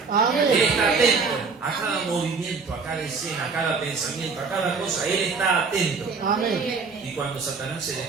Él está atento a cada movimiento, a cada escena, a cada pensamiento, a cada cosa. Él está atento. Y cuando Satanás se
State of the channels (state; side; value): quieter; left; 4.8 dB